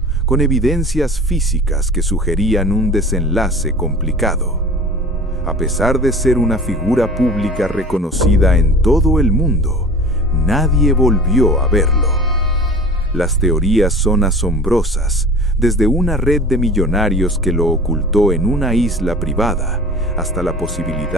con evidencias físicas que sugerían un desenlace complicado. A pesar de ser una figura pública reconocida en todo el mundo, nadie volvió a verlo. Las teorías son asombrosas, desde una red de millonarios que lo ocultó en una isla privada, hasta la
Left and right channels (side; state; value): both; normal; correlation 0.40